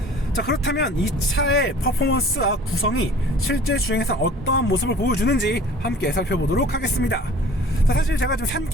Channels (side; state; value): both; normal; correlation 0.47